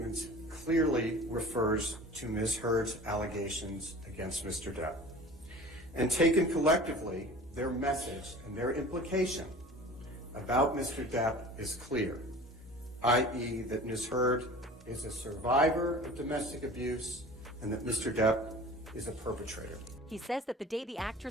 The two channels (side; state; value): both; normal; correlation 0.41